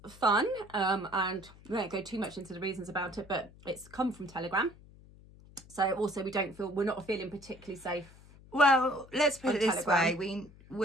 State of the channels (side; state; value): left; noise; hum, 22 dB below the sound